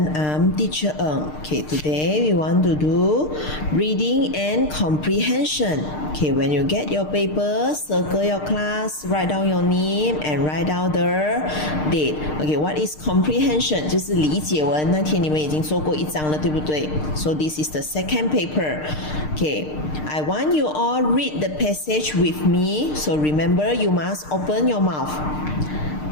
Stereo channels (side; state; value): right; late; 6.6 ms